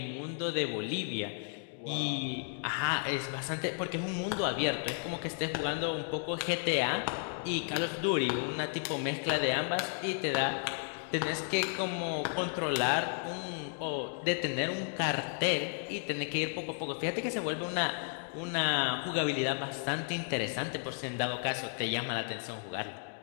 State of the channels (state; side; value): silent; right; 55 dB below the other